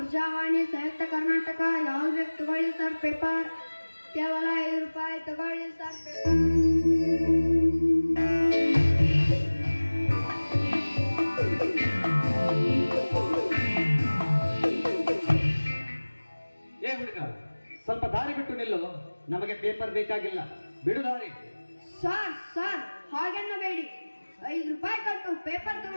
ಸಂಯುಕ್ತ ಕರ್ನಾಟಕ, ಯಾವ್ದು ಬೇಕು ತಗೊಳ್ಳಿ ಸರ್. ಪೇಪರ್ ಕೇವಲ 5 ರೂಪಾಯಿ ತಗೊಳ್ಳಿ ಸರ್. ಪೇಪರ್ ಏ ಹುಡುಗ, ಸ್ವಲ್ಪ ದಾರಿ ಬಿಟ್ಟು ನಿಲ್ಲು. ನಮಗೆ ಪೇಪರ್ ಬೇಕಾಗಿಲ್ಲ, ಬಿಡು ದಾರಿ. Sir, sir, ಹಾಗೆನ್ನಬೇಡಿ. 5 ರೂಪಾಯಿ ಕೊಟ್ಟು ಪೇಪರ್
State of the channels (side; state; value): both; inverted; correlation -1.00